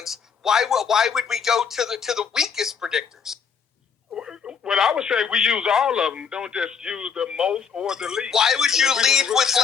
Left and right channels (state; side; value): quieter; right; 6.5 dB